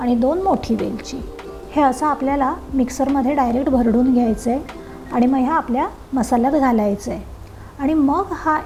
2 मोठी वेलची. हे असं आपल्याला मिक्सरमध्ये डायरेक्ट भरडून घ्यायचं आहे आणि मग ह्या आपल्या मसाल्यात घालायचं आहे. आणि मग हा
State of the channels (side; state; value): both; identical; correlation 1.00